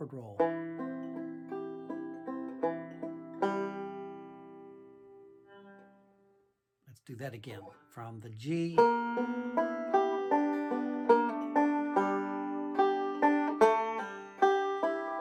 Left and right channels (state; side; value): identical; both; correlation 1.00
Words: roll. Let's do that again. From the G.